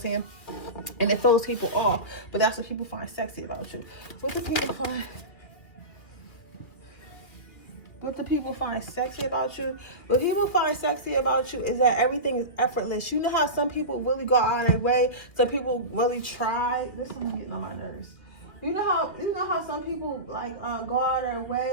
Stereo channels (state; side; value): late; right; 2.1 ms